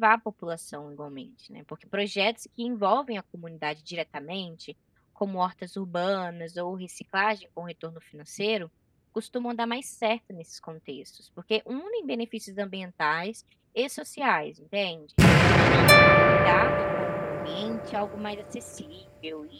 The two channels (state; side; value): identical; both; correlation 1.00